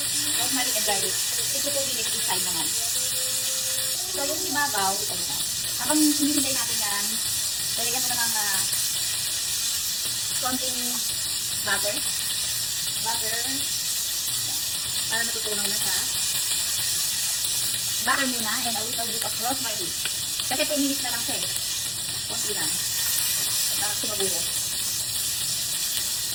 rosemary, and garlic. 2 to 2 minutes each time naman. So, yung ibabaw, ito na. Habang hinihintay natin yan, lalagyan mo na ng konting butter. Para natutunaw na siya. Butter muna and a little bit of rosemary. Kasi 2 minutes na lang siya eh. Konti lang. Para sumaburo.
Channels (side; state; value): both; identical; correlation 1.00